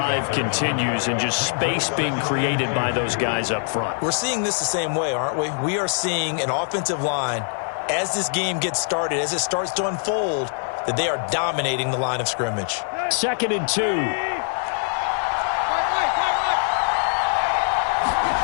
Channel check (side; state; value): right; silent; 63 dB below the other